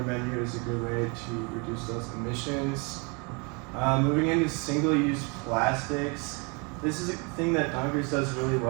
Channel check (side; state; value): left; quieter; 31.6 dB